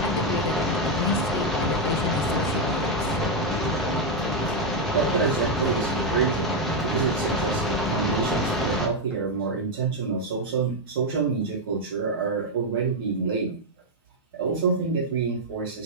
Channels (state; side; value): normal; both; correlation 0.02